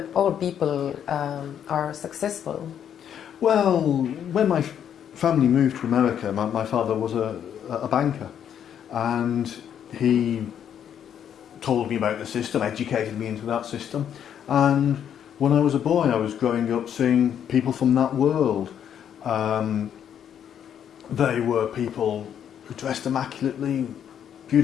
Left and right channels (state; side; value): quieter; right; 9.1 dB